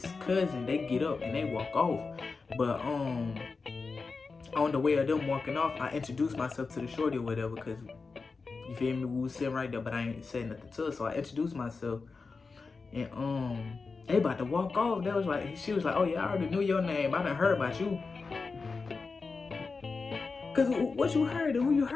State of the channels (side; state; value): right; quieter; 4.4 dB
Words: cousin, they get up and they walk off. But on the way of them walking off, I introduced myself to the shorty or whatever, because, you feel me, we was sitting right there, but I ain't saying nothing to her, so I introduced myself, and they about to walk off. She was like, oh yeah, I already knew your name, I done heard about you. Cause what you heard and who you